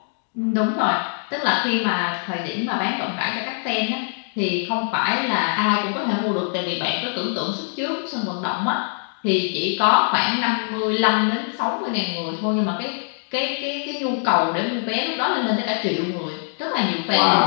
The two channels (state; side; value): silent; right; digital silence